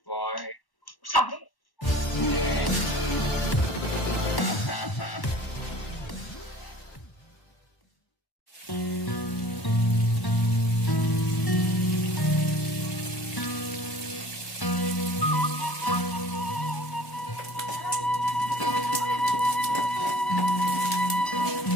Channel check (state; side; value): late; right; 1.1 ms